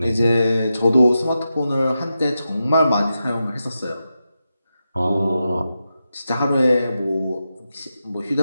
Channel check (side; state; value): both; inverted; correlation -0.89